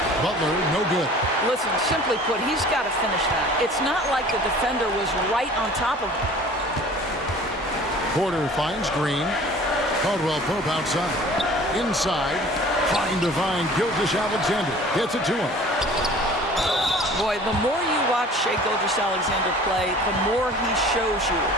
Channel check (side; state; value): both; normal; correlation 0.46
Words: Butler, no good. Listen, simply put, he's got to finish that. It's not like the defender was right on top of him. Porter finds Green. Caldwell Pope outside. Inside. Trying to find Gilgeous-Alexander. Gets it to him. Boy, the more you watch Shai Gilgeous-Alexander play, the more he shows you